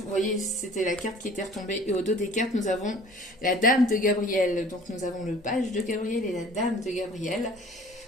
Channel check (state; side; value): normal; both; correlation 0.49